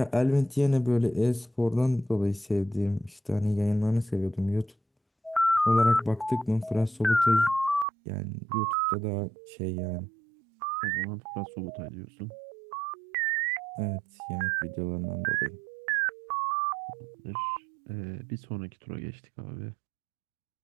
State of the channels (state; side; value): drops out; left; at 7.9 s